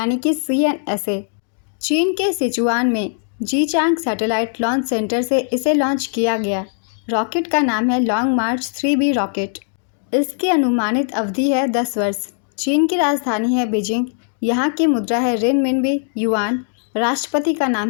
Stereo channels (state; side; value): silent; right; 60 dB below the other